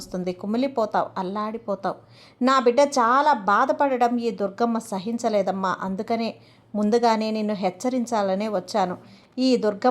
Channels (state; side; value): identical; both; correlation 1.00